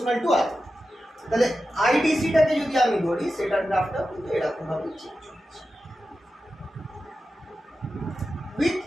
টু আর। তাহলে আইডিসিটাকে যদি আমি ধরি সেটার গ্রাফটা কিন্তু এরকম ভাবে চেঞ্জ হচ্ছে উইথ।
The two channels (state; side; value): normal; both; correlation 0.92